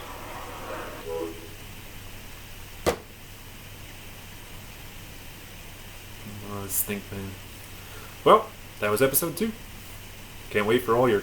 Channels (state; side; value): identical; both; correlation 1.00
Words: Stink man. Well, that was episode 2. Can't wait for all your